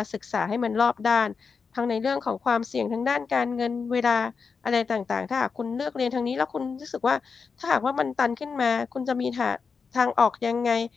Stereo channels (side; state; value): right; quieter; 5.3 dB